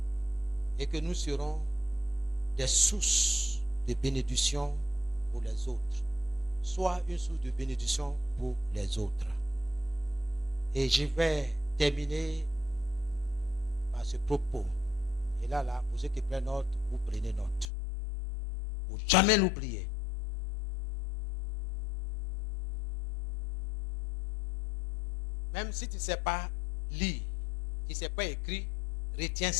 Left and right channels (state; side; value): drops out; right; at 17.7 s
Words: et que nous serons des sources de bénédiction pour les autres. Soit une source de bénédiction pour les autres. Et je vais terminer par ce propos. Et là, pour ceux qui prennent note, vous prenez note. Pour jamais l'oublier. Même si tu ne sais pas lire, tu ne sais pas écrire, retiens